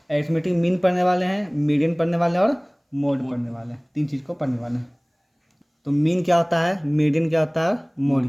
अरिथमेटिक मीन पढ़ने वाले हैं, मीडियन पढ़ने वाले हैं और मोड पढ़ने वाले हैं। 3 चीज़ को पढ़ने वाले हैं। तो मीन क्या होता है, मीडियन क्या होता है,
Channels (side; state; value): both; identical; correlation 1.00